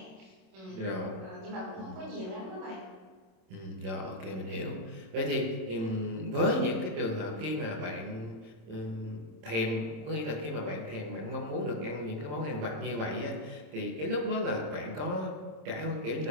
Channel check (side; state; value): left; late; 27 ms